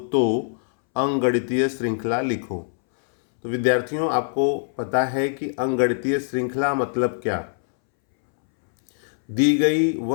तो अंकगणितीय श्रृंखला लिखो। तो विद्यार्थियों, आपको पता है कि अंकगणितीय श्रृंखला मतलब क्या। दी गई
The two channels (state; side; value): silent; right; 63 dB below the other